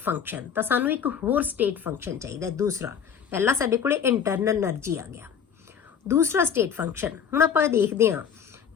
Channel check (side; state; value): right; quieter; 7.7 dB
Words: function. तो सानू एक होर state function चाहिए। दूसरा पहला साडे कोले internal energy आ गया, दूसरा स्टेट फंक्शन। हुण आपां देखते हैं